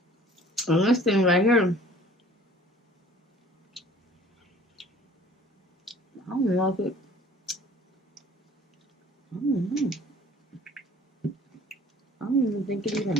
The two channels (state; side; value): normal; both; correlation 0.51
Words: And this thing right here, I don't know if it, I don't know. I don't even think it